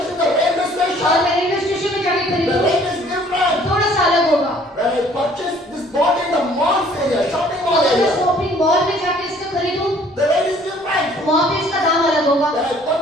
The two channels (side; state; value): both; normal; correlation 0.57